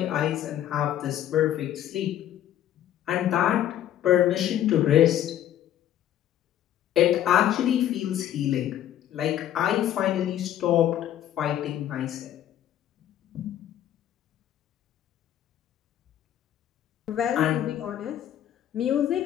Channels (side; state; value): right; quieter; 11.4 dB